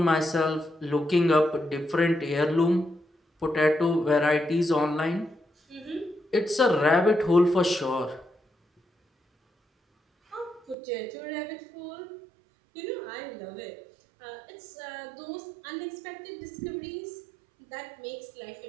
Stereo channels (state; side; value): drops out; left; at 10.8 s